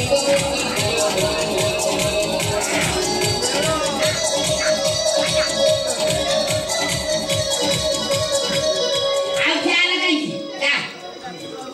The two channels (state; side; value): identical; both; correlation 1.00